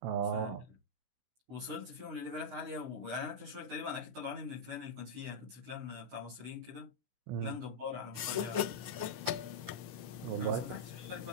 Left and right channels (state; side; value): late; left; 16 ms